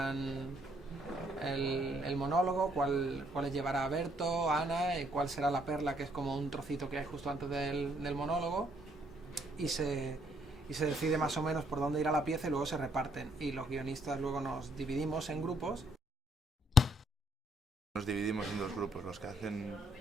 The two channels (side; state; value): both; normal; correlation 0.69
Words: el monólogo, cuáles llevará Berto, Ana, y cuál será la perla, que es como un trocito que hay justo antes del monólogo, y se decide más o menos por dónde irá la pieza y luego se reparten, y los guionistas luego nos dividimos en grupos. Nos dividimos en dos grupos, los que hacen